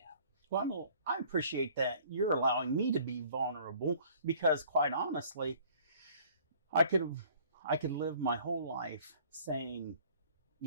Well, I appreciate that you're allowing me to be vulnerable, because quite honestly, I could live my whole life saying,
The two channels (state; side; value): inverted; both; correlation -0.54